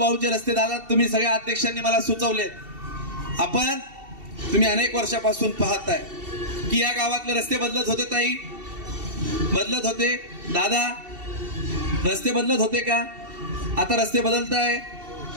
रस्ते दादा तुम्ही सगळ्या अध्यक्षांनी मला सुचवलेत. आपण तुम्ही अनेक वर्षापासून पाहताय की या गावातले रस्ते बदलत होते. ताई बदलत होते, दादा रस्ते बदलत होते का? आता रस्ते बदलताय.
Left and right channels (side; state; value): left; late; 2.7 ms